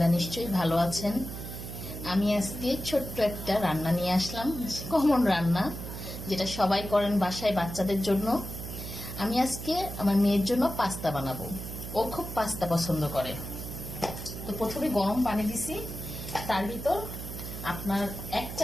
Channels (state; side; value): noise; right; hum, 8 dB below the sound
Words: নিশ্চয়ই ভালো আছেন। আমি আজকে ছোট্ট একটা রান্না নিয়ে আসলাম, কমন রান্না যেটা সবাই করেন বাসায় বাচ্চাদের জন্য। আমি আজকে আমার মেয়ের জন্য পাস্তা বানাবো। ও খুব পাস্তা পছন্দ করে। তো প্রথমে গরম পানি দিছি, তার ভিতর আপনার 1